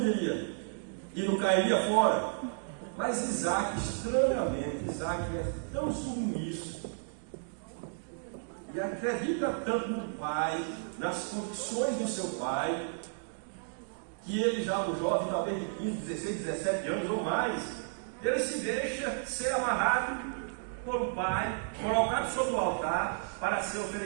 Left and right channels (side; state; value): left; silent; digital silence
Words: diria? E não cairia fora? Mas Isaac, estranhamente, Isaac é tão submisso e acredita tanto no pai, nas condições do seu pai, que ele já um jovem, talvez de 15, 16, 17 anos ou mais, ele se deixa ser amarrado por um pai, colocado sobre o altar para ser